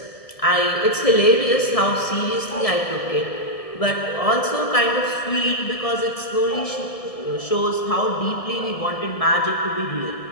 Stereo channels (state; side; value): late; right; 1.7 ms